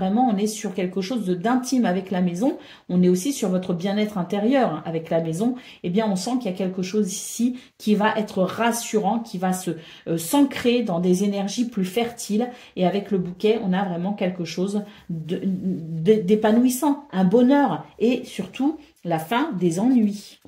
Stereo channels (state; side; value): identical; both; correlation 1.00